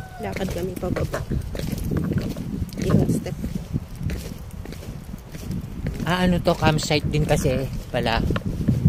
Lakad kami pababa. Yung step. Ano to, campsite din kasi pala.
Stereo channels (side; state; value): both; identical; correlation 1.00